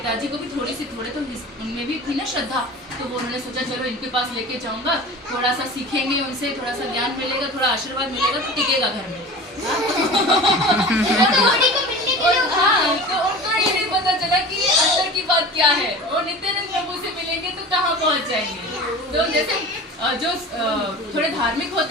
को भी थोड़े तो उनमें भी थी ना श्रद्धा, तो वो उन्होंने सोचा चलो इनके पास लेके जाऊंगा, थोड़ा सा सीखेंगे उनसे, थोड़ा सा ज्ञान मिलेगा, थोड़ा आशीर्वाद मिलेगा, तो टिकेगा घर में। हाँ, तो उनको ये नहीं पता चला कि अंदर की बात क्या है, वो नित्यानंद प्रभु से मिलेंगे तो कहाँ पहुँच जाएंगे। तो जैसे जो थोड़े धार्मिक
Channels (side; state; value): both; normal; correlation 0.37